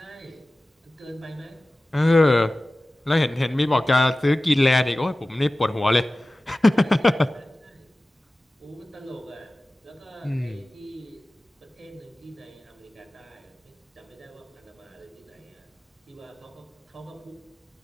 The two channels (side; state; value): both; normal; correlation 0.97